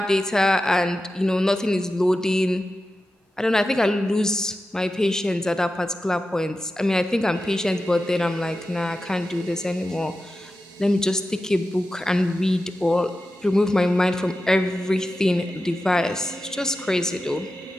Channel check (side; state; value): both; normal; correlation 0.92